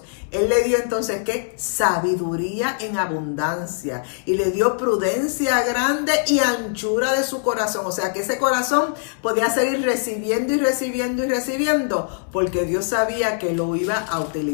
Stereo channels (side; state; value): right; silent; 64 dB below the other